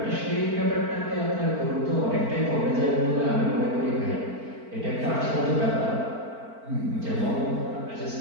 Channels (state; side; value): late; left; 4.5 ms